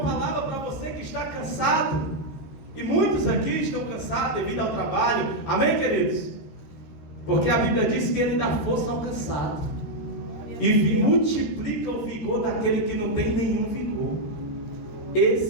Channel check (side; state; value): right; late; 13 ms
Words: para você que está cansado, e muitos aqui estão cansados devido ao trabalho. Amém, queridos? Porque a Bíblia diz que Ele dá força ao cansado e multiplica o vigor daquele que não tem nenhum vigor.